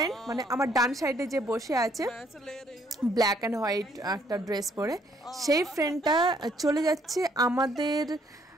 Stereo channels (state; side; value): normal; both; correlation 0.67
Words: মানে আমার ডান সাইডে যে বসে আছে ব্ল্যাক অ্যান্ড হোয়াইট একটা ড্রেস পরে, সেই ফ্রেন্ডটা চলে যাচ্ছে আমাদের